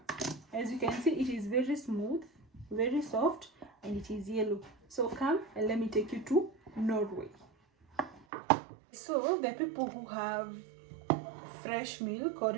As you can see, it is very smooth, very soft, and it is yellow. So come and let me take you to Norway. So the people who have fresh milk, or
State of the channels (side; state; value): left; drops out; at 8.2 s